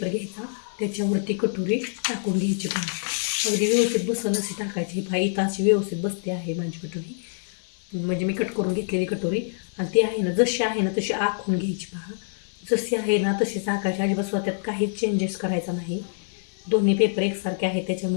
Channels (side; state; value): right; silent; digital silence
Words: घ्यायचा, त्याच्यावरती कटोरी टाकून घ्यायची. पहा अगदी व्यवस्थित बसल अशी टाकायची. पहा इथं अशी व्यवस्थित बसते आहे माझी कटोरी, म्हणजे मी कट करून घेतलेली कटोरी. आणि ती आहे ना जशी आहे ना तशी आखून घ्यायची. पहा जशी आहे ना तशीच आखायची, अजिबात स्वतःत काहीच चेंजेस करायचा नाही. दोन्ही पेपर एकसारखे आहेत